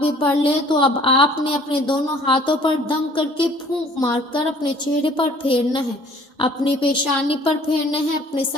بھی پڑھ لے تو اب آپ نے اپنے دونوں ہاتھوں پر دم کر کے پھونک مار کر اپنے چہرے پر پھیرنا ہے، اپنی پیشانی پر پھیرنا ہے، اپنے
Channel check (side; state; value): both; normal; correlation 0.55